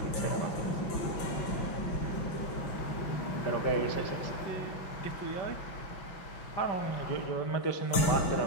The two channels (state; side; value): late; right; 5.8 ms